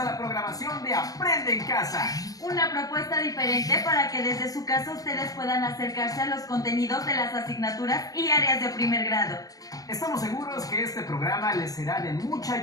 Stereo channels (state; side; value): late; right; 0.18 ms